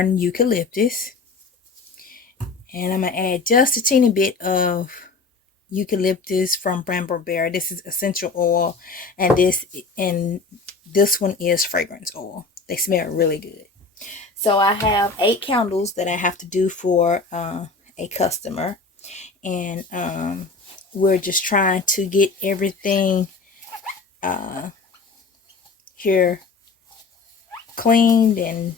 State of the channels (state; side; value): quieter; right; 4.1 dB